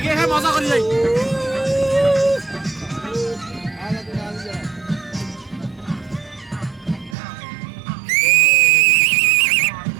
মজা করি যাই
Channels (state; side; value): drops out; left; at 7.2 s